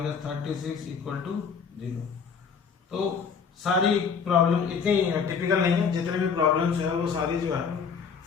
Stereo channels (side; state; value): right; quieter; 6.1 dB